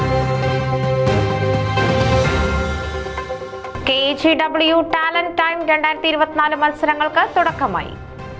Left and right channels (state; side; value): identical; both; correlation 1.00